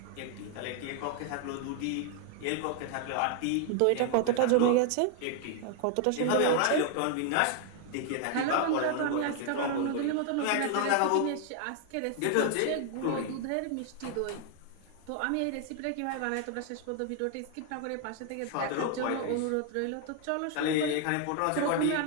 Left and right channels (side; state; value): both; different; correlation 0.00